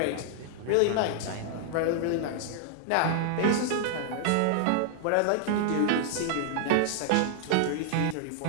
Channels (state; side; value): different; both; correlation -0.01